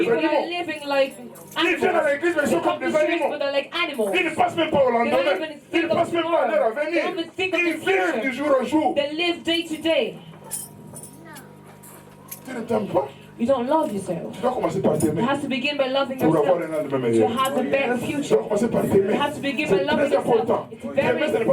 are animaux. living like Ils viennent à animals. l'église mais ils They sont comme come to des church, animaux. but they're like animals. Ils ne passent même pas au lendemain. They don't even Ils think ne of passent même pas à l'heure à tomorrow. venir. They don't even think of Ils the vivent future. du jour au jour. They live day to day. Tu ne t'aimes pas. You don't love yourself. Tu dois commencer par t'aimer You have to begin by loving pour avoir yourself. un lendemain To meilleur. have a better Tu dois future. commencer par t'aimer. You have to begin by C'est loving très important. yourself. It's T'aimer, ce n'est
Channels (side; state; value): both; identical; correlation 1.00